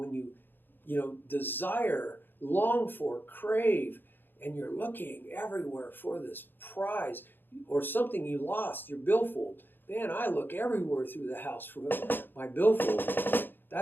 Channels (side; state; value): right; late; 0.096 ms